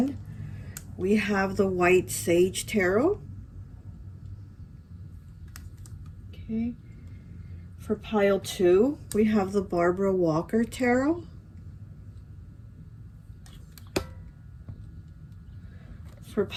we have the White Sage Tarot. Okay. For pile 2, we have the Barbara Walker Tarot. For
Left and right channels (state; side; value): identical; both; correlation 1.00